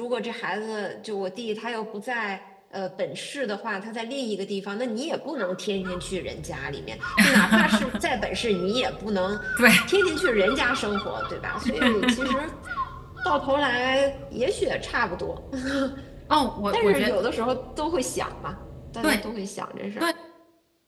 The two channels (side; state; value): both; identical; correlation 1.00